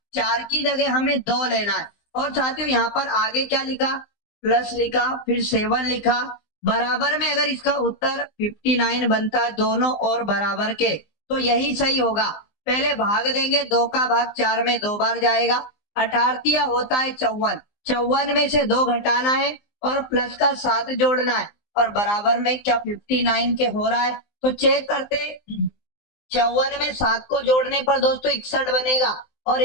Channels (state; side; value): late; right; 19 ms